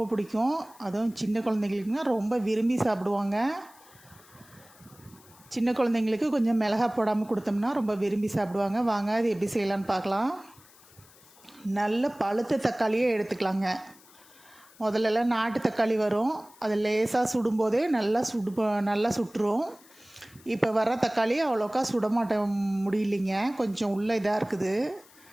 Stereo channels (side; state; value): left; noise; hiss, 25 dB below the sound